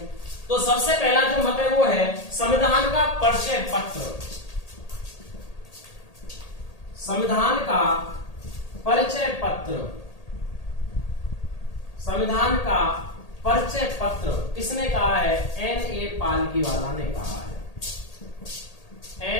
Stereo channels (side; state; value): right; late; 1.8 ms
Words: तो सबसे पहला जो मत है वो है संविधान का परिचय पत्र। संविधान का परिचय पत्र, संविधान का परिचय पत्र किसने कहा है? N.A. पालकीवाला ने कहा है।